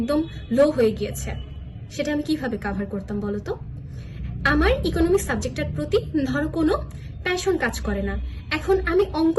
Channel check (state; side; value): identical; both; correlation 1.00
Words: লো হয়ে গিয়েছে, সেটা আমি কিভাবে কাভার করতাম বলতো? আমার ইকোনমিক্স সাবজেক্টের প্রতি ধরো কোনো প্যাশন কাজ করে না, এখন আমি